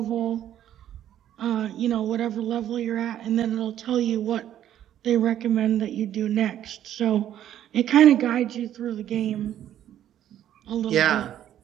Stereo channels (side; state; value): left; quieter; 11.2 dB